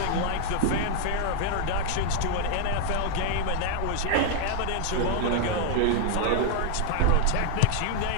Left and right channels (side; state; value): both; different; correlation 0.00